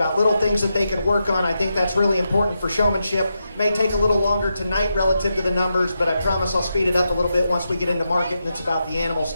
little things that they can work on. I think that's really important for showmanship. May take a little longer tonight relative to the numbers, but I promise I'll speed it up a little bit once we get into market and it's about the animals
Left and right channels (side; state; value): both; inverted; correlation -0.86